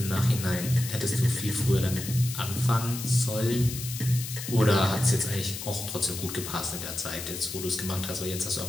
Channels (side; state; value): left; noise; hiss, 8 dB below the sound